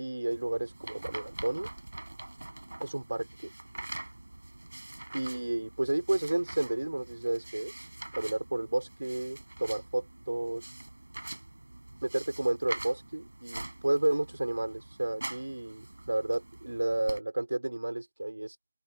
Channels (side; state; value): both; inverted; correlation -1.00